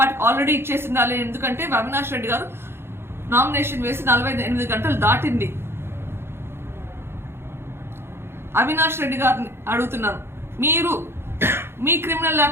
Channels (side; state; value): left; late; 0.11 ms